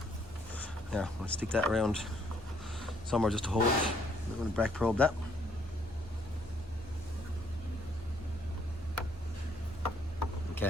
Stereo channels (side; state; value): both; normal; correlation 0.68